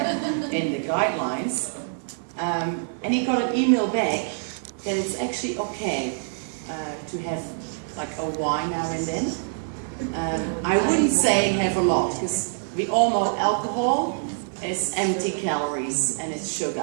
guidelines. And he got an email back that it's actually okay to have like a wine now and then. I wouldn't say have a lot, because we all know alcohol is empty calories and it's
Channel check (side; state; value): left; silent; 62 dB below the other